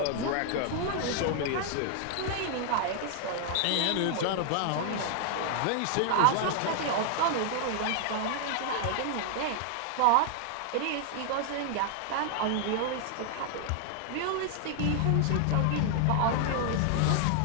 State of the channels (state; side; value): different; both; correlation 0.00